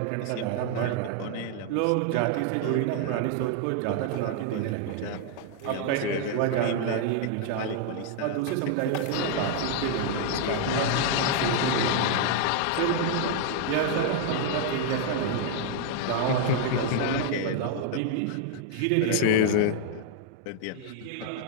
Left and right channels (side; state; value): both; different; correlation 0.00